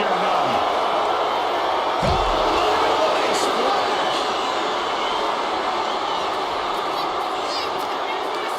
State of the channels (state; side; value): identical; both; correlation 1.00